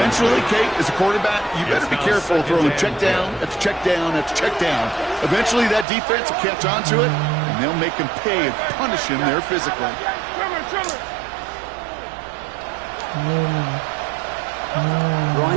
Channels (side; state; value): left; drops out; at 5.9 s